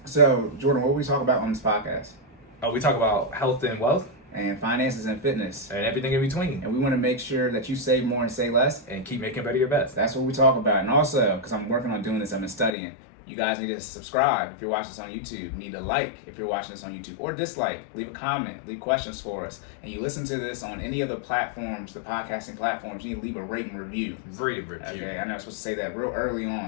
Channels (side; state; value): right; drops out; at 12.7 s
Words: So, Jordan, what we talk about on this podcast? Oh, we talk about health and wealth. And finances and fitness. And everything in between. And we want to make sure that you save more and say less. And keep making better your best. That's what we talk about. And also, because I'm working on doing this, I've been studying. You guys need to subscribe if you're watching this on YouTube. You need to like if you're watching this on YouTube. Or dislike. Leave a comment. Leave questions for us. And you listen to this on any of the platforms, the podcasting platforms, you need to leave a rating review. Rate review. Okay, I know I'm supposed to say that real early